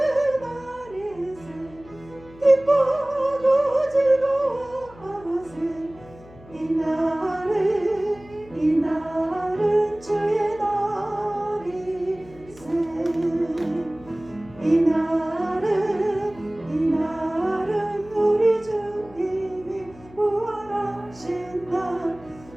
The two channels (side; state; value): left; noise; hum, 22 dB below the sound